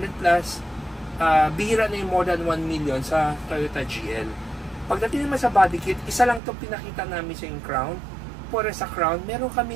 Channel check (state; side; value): drops out; left; at 6.4 s